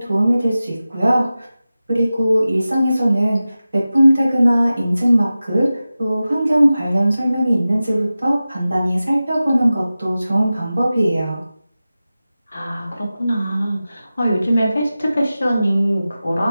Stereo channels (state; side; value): inverted; both; correlation -0.95